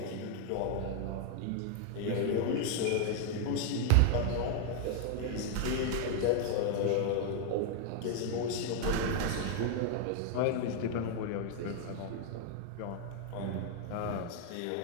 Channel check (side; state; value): both; different; correlation 0.00